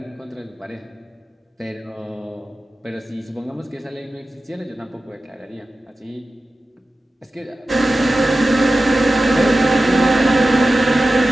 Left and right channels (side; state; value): both; normal; correlation 0.94